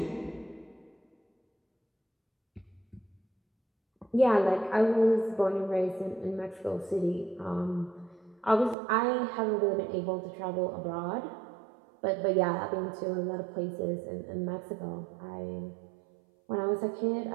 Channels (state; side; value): drops out; left; at 8.8 s